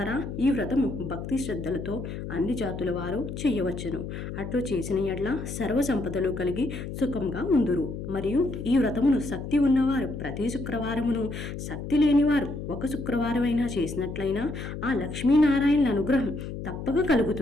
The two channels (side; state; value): left; noise; hum, 7 dB below the sound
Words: ఈ వ్రతము భక్తి శ్రద్ధలతో అన్ని జాతుల వారు చేయవచ్చును. అట్లు చేసిన ఎడ్ల సర్వ సంపదలు కలిగి సుఖంగా ఉందురు. మరియు ఈ వ్రతమును శక్తి ఉన్నవారు ప్రతి శుక్రవారమును, శక్తి లేనివారు ఒక శుక్రవారమైనా చేసినట్లయినా ఆ లక్ష్మీనారాయణుల అనుగ్రహం తప్పక